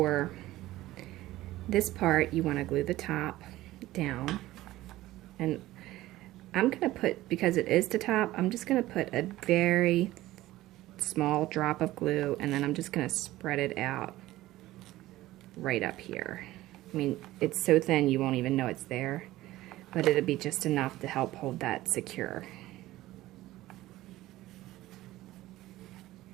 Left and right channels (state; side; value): quieter; left; 16.4 dB